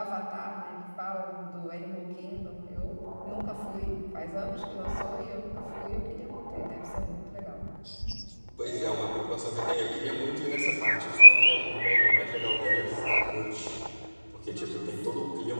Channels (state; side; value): inverted; both; correlation -1.00